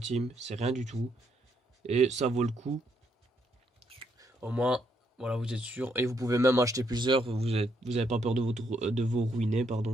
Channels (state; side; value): normal; both; correlation 0.74